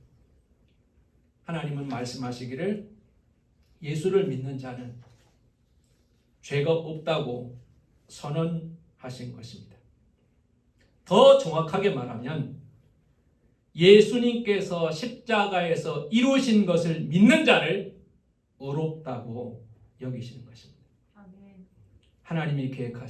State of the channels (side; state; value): both; identical; correlation 1.00